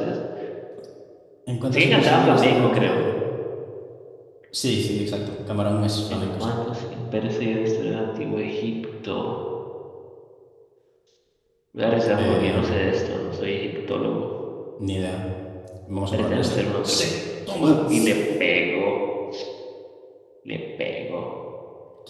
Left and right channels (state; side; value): identical; both; correlation 1.00